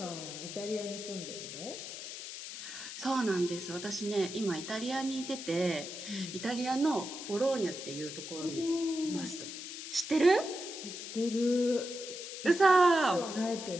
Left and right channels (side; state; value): left; noise; hiss, 9 dB below the sound